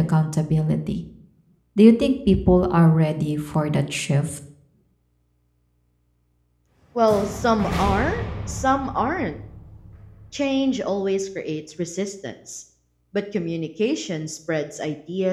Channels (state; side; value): identical; both; correlation 1.00